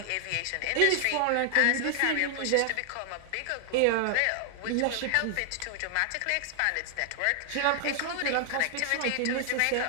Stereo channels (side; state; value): both; different; correlation 0.00